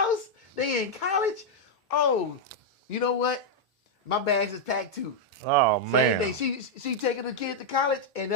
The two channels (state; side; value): normal; both; correlation -0.03